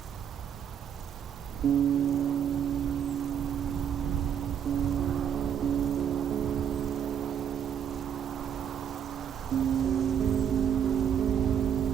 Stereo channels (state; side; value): quieter; left; 8.6 dB